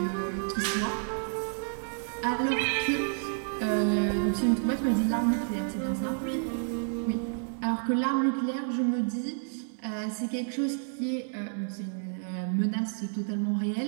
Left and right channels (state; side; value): silent; left; digital silence